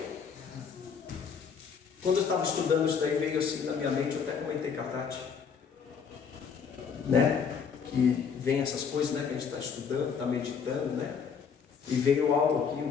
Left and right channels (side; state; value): right; quieter; 6.4 dB